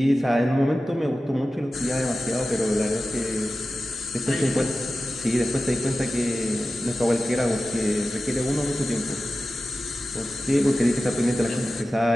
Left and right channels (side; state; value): both; normal; correlation 0.94